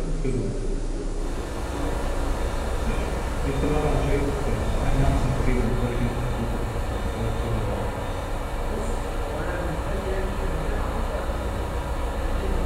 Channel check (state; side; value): identical; both; correlation 1.00